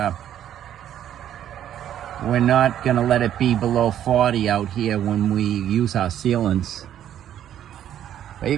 gonna let it be below 40 out here when we use our sealants. But you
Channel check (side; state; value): left; quieter; 10.8 dB